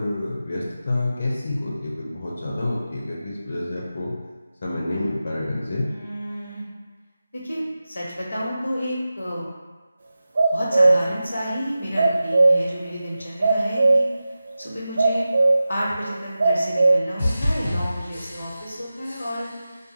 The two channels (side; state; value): both; inverted; correlation -0.94